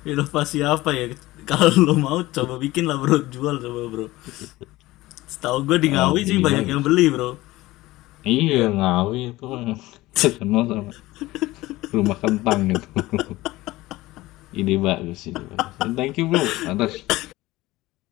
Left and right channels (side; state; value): right; quieter; 18.5 dB